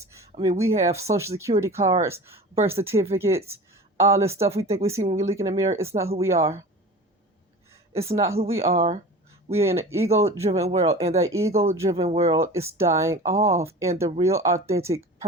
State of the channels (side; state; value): both; normal; correlation 0.36